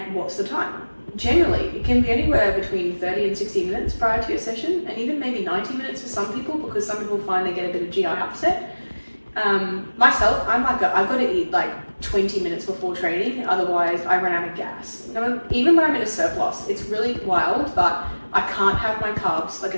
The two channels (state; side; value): inverted; both; correlation -1.00